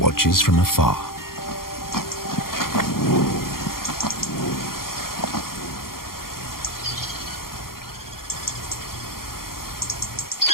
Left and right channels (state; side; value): late; right; 0.92 ms